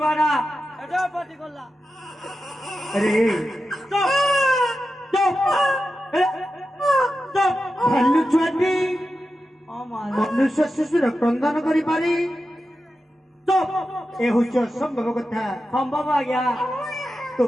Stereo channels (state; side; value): normal; both; correlation 0.91